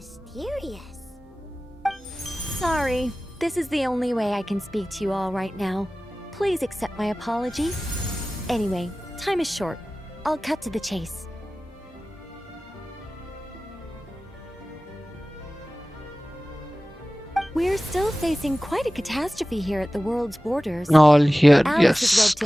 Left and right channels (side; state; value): both; normal; correlation 0.97